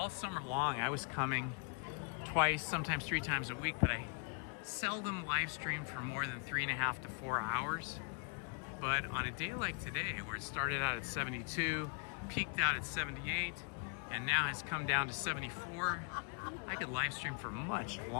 summer long, I was coming twice, sometimes 3 times a week, but I seldom live streamed for more than 3.5 to 4 hours. But on a day like today, where it started out at 72, peaked out at 78, and now has come down to 74, I could live stream for much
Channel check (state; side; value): quieter; right; 38.3 dB